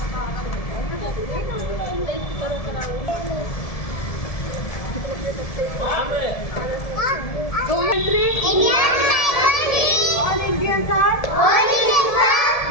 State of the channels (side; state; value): right; late; 1.7 ms